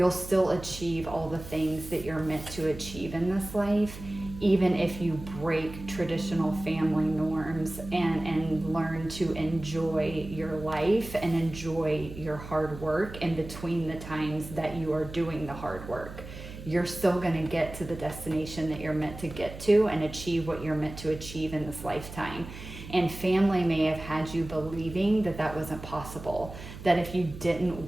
still achieve all the things that you're meant to achieve in this life, even if you break traditional family norms and learn to enjoy your life and enjoy your hard work in between the times that you are doing the hard work. You're still going to get to the destination that you're meant to get to and achieve what you're meant to achieve in this lifetime. And family may have had you believing that that wasn't possible, that if you didn't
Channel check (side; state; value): right; noise; hum, 12 dB below the sound